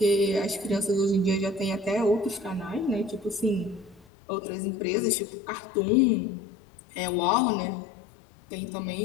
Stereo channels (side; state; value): right; drops out; at 4.0 s